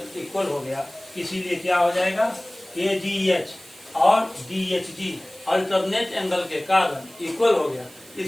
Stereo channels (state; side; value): noise; right; hiss, 22 dB below the sound